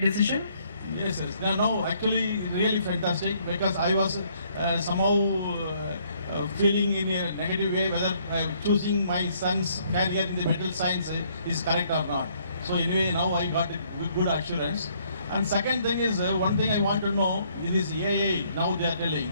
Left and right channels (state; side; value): inverted; both; correlation -0.66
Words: decision? Yes, yes. No, actually, really fantastic, because I was somehow feeling in a negative way whether choosing my son's career in the metal science is correct or not. So anyway, now I got a good assurance. And second thing is, one thing I want to know in this AI, now they are telling,